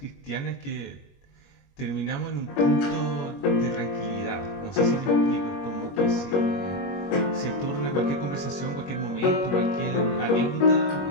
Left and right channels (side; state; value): right; late; 21 ms